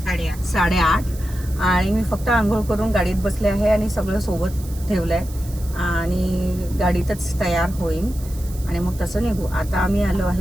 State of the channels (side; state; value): right; noise; hiss, 18 dB below the sound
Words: आणि मी फक्त आंघोळ करून गाडीत बसले आहे आणि सगळं सोबत ठेवलंय आणि गाडीतच तयार होईन आणि मग तसं निघू. आता आम्ही आलो